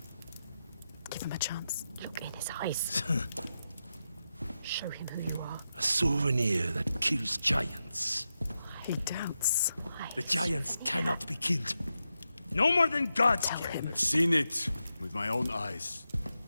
Give him a chance. Look in his eyes. Show him who you are. A souvenir that kills giants. He doubts. Why? The giants cannot be killed. No more than gods can. I've seen it with my own eyes.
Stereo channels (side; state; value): both; inverted; correlation -0.88